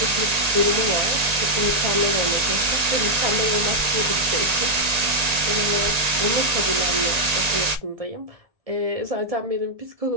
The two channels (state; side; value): late; left; 1.9 ms